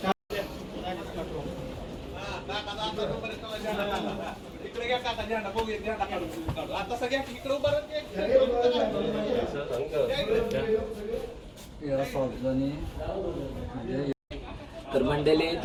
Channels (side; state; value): both; identical; correlation 1.00